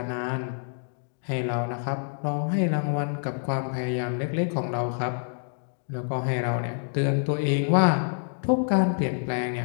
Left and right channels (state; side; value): silent; right; 60 dB below the other